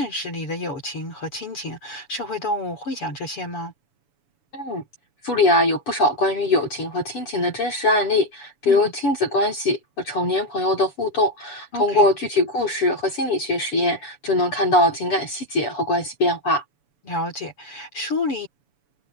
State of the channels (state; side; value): late; right; 7.0 ms